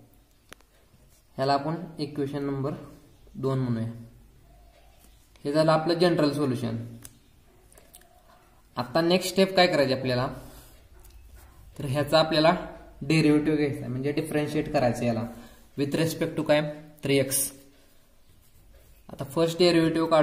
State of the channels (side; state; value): both; identical; correlation 1.00